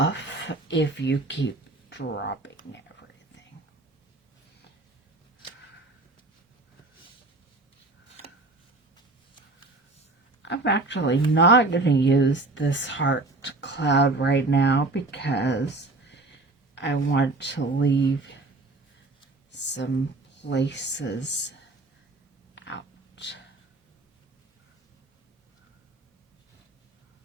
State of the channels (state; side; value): quieter; left; 3.2 dB